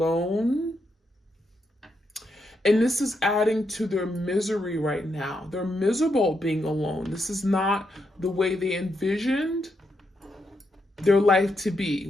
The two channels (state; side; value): normal; both; correlation 0.81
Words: And this is adding to their misery right now. They're miserable being alone. This is not the way they envisioned their life to be,